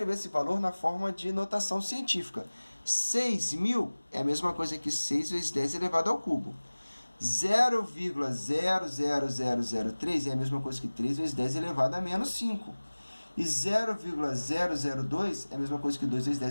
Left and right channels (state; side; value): inverted; both; correlation -1.00